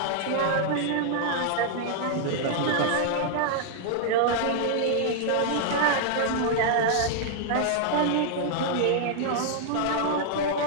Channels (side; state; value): both; different; correlation -0.01